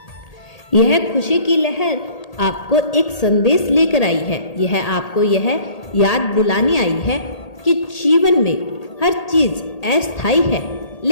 यह खुशी की लहर आपको एक संदेश लेकर आई है। यह आपको यह याद दिलाने आई है कि जीवन में हर चीज अस्थायी है,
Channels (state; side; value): late; right; 1.8 ms